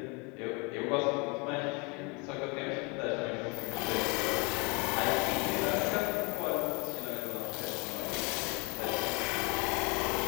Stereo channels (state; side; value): quieter; right; 30.2 dB